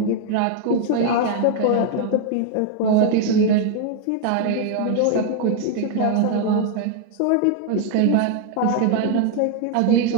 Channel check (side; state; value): both; different; correlation 0.01